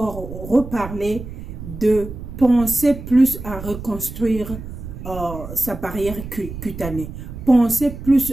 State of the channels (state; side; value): noise; right; rumble, 10 dB below the sound